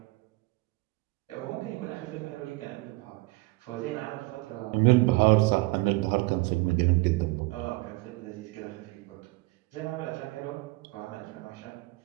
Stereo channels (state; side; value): quieter; left; 23.2 dB